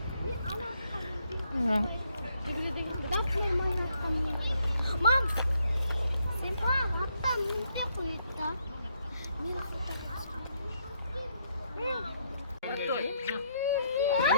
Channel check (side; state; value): both; inverted; correlation -0.74